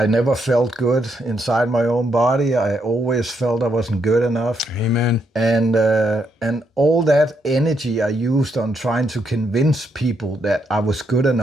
never felt good inside my own body. I always felt I wasn't good enough. Amen. And all that energy I used on trying to convince people that I was good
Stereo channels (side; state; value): both; normal; correlation 0.77